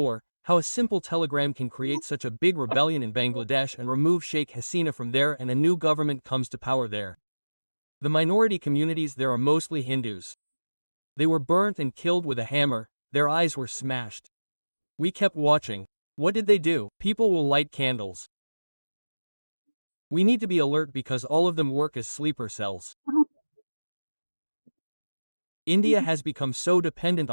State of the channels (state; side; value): inverted; both; correlation -1.00